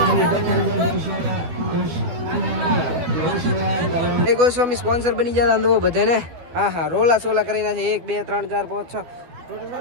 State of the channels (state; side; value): late; left; 12 ms